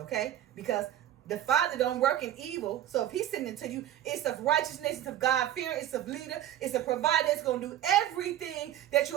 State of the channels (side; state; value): left; quieter; 11.8 dB